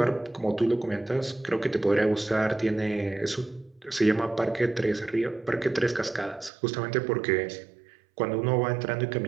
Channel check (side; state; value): left; drops out; at 6.5 s